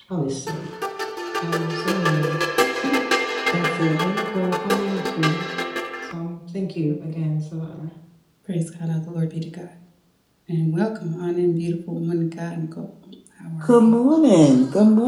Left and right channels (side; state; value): both; identical; correlation 1.00